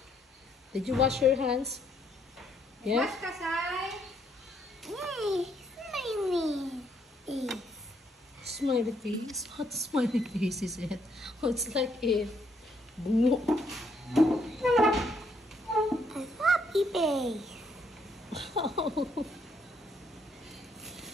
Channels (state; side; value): normal; both; correlation 0.71